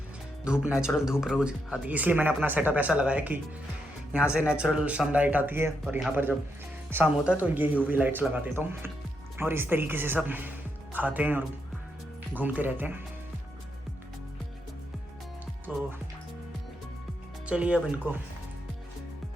धूप, नेचुरल धूप रोज आती है, इसलिए मैंने अपना सेटअप ऐसा लगाया कि यहाँ से नेचुरल सनलाइट आती है, और यहाँ पर जब शाम होता है तो ये यूवी लाइट्स लगा देता हूँ, और इस तरीके से सब खाते हैं और घूमते रहते हैं। तो चलिए अब इनको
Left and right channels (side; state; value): both; normal; correlation 0.81